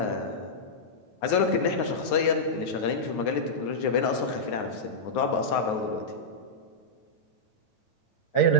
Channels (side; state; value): right; late; 9.5 ms